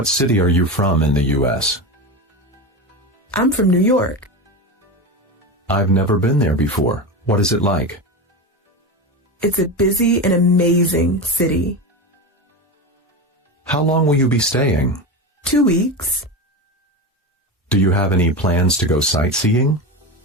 city are you from in the U.S.? I'm from New York. I've never been there before. What is it like? It's a busy and amazing city. How long will you be staying? 2 weeks. Do you have any plans to go sightseeing?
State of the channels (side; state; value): both; normal; correlation 0.21